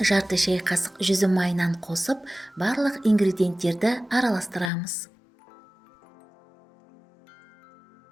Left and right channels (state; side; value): drops out; right; at 4.7 s